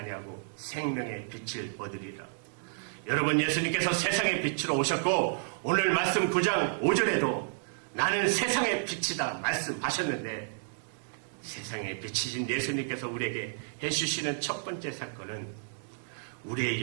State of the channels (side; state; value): left; silent; digital silence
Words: 생명의 빛을 얻으리라. 여러분, 예수님께서 세상의 빛으로 오셨고 오늘 말씀 9장 5절에도 나는 세상의 빛이다 말씀하셨는데, 세상의 빛이신 예수님께서 우리에게 해주시는 첫 번째 사건은 우리의